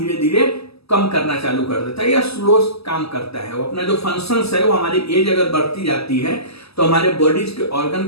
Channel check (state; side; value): late; right; 0.78 ms